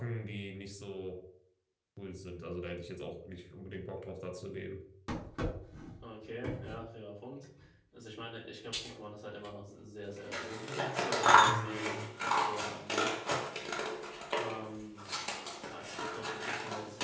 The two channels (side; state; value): both; identical; correlation 1.00